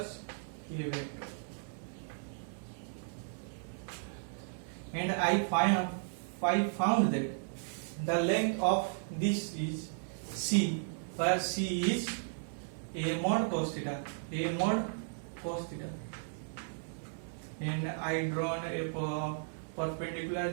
A vector. And I found that the length of this is C, where C is A mod cos theta, A mod cos theta. And I drawn a perpendicular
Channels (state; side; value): silent; left; digital silence